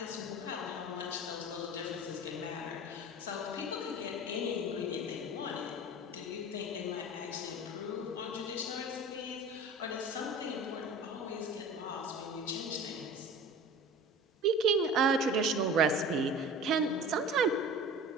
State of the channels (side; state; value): both; normal; correlation 0.38